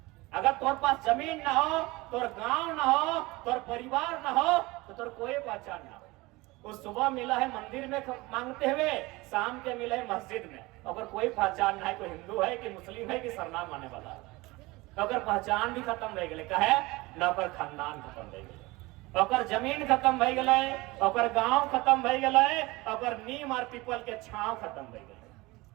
अगर तोर पास जमीन ना हो, तोर गांव ना हो, तोर परिवार ना हो, तो तोर कोई पहचान ना हो। उस सुबह मिला है मंदिर में मांगते हुए, शाम के मिला है मस्जिद में, अगर कोई पहचान ना है, कोई हिंदू है कि मुस्लिम है कि सरनाम आने वाला है, अगर पहचान भी खत्म रह गए, कहे न ओकर खानदान खत्म रह गए, ओकर जमीन खत्म भई गए, ओकर गांव खत्म भई गए, ओकर नीम और पीपल के छांव खत्म भई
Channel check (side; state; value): left; quieter; 22.0 dB